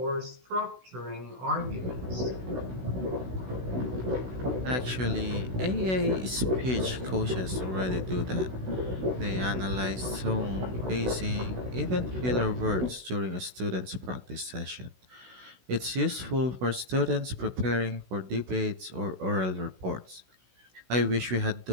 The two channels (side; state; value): left; late; 16 ms